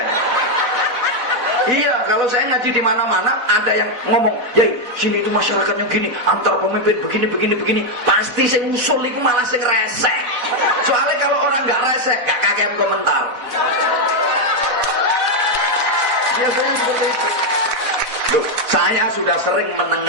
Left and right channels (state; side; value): late; left; 4.0 ms